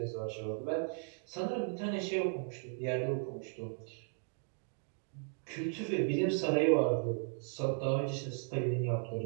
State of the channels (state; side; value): silent; left; 54 dB below the other